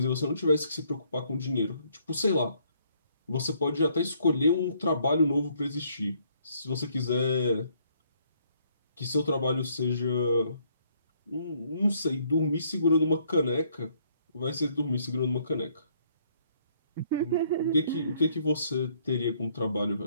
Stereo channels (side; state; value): both; inverted; correlation -0.67